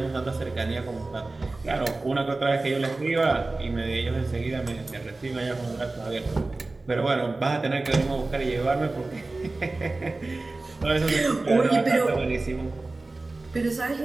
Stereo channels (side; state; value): left; quieter; 3.2 dB